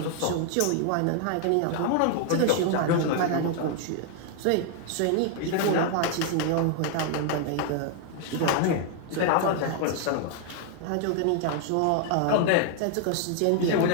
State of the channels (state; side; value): different; both; correlation 0.00